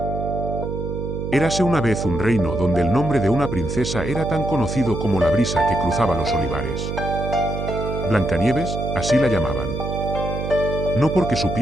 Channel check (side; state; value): right; noise; hum, 4 dB below the sound